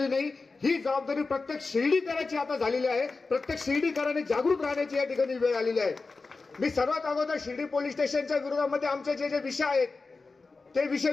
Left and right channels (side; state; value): right; quieter; 4.0 dB